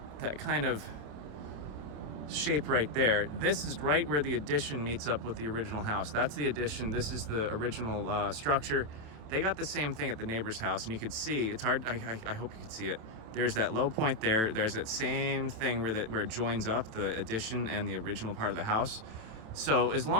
that kind of shape right there, this is right where the addition meets up with the original house. That's the addition. This is the original structure. They got the same thing at the neighbor's house, and you could see, it's hard, I hope you could see it. There's that low point there. There's that same thing where it joins up the addition and the original part of the house. So as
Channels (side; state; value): left; late; 27 ms